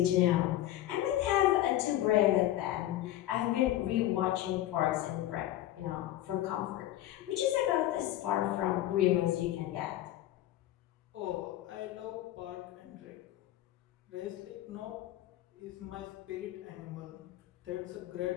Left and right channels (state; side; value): quieter; right; 14.0 dB